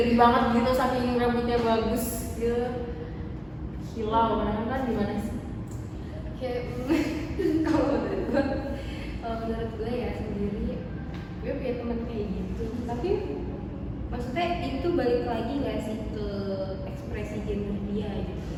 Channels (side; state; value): both; identical; correlation 1.00